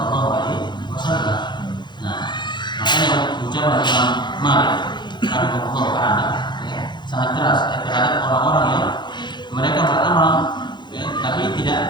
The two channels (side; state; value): right; late; 0.22 ms